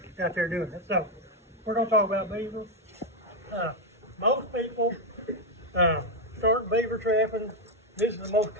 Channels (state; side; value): normal; both; correlation 0.04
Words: out there doing it. So, we're going to talk about beavers. Most people start beaver trapping. This is the most